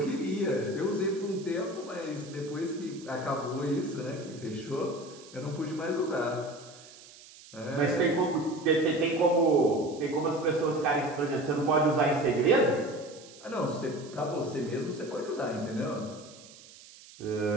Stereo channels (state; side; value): noise; right; hiss, 20 dB below the sound